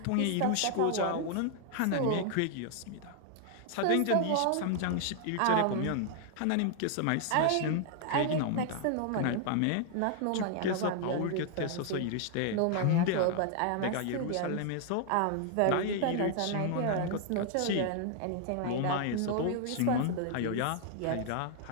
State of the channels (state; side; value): different; both; correlation 0.00